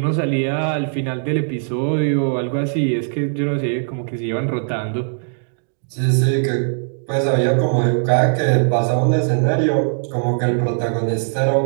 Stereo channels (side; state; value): left; silent; digital silence